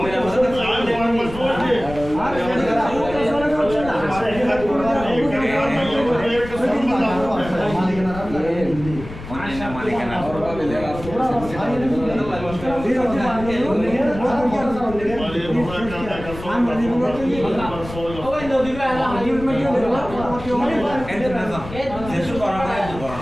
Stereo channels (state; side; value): noise; left; rumble, 12 dB below the sound